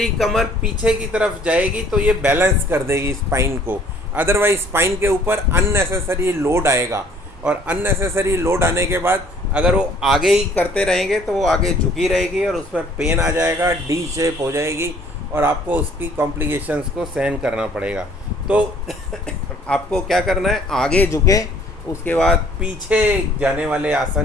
कमर पीछे की तरफ जाएगी तो ये बैलेंस कर देगी स्पाइन को। अदरवाइज स्पाइन के ऊपर अननेसेसरी लोड आएगा, और अननेसेसरी लोड आने के बाद अगर वो आगे ही करते रहेंगे तो वो आगे झुकी रहेगी और उसमें पेन आ जाएगा, डी शेप हो जाएगी और आपको उसकी कॉम्प्लिकेशंस को सहन करना पड़ेगा। तो आपको क्या करना है, आगे झुके, उसके बाद पीछे जाने वाले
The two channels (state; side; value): normal; both; correlation 0.57